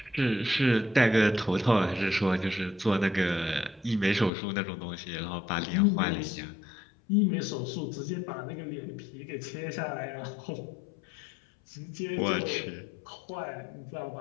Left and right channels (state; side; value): drops out; right; at 4.3 s